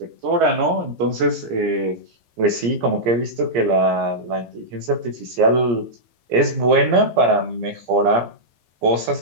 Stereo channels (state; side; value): late; left; 17 ms